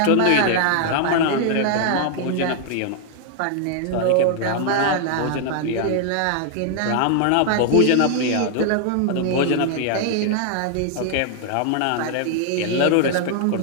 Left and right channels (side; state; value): both; different; correlation 0.00